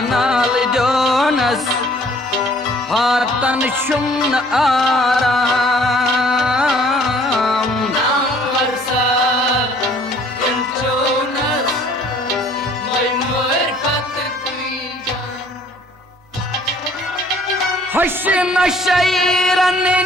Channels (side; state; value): both; normal; correlation 0.57